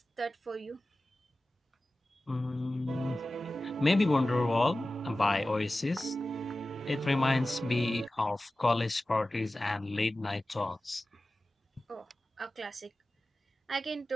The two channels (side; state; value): both; normal; correlation 0.95